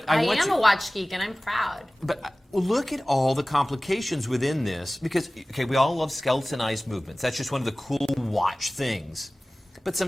I am a watch geek, and I'm proud. But look at all the complications within this, because, okay, we all love skeletonized movements. That's just one of the cool watch things. But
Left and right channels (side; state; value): both; normal; correlation 0.98